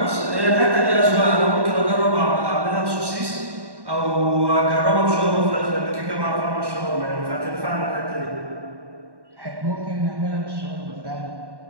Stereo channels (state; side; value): late; left; 1.1 ms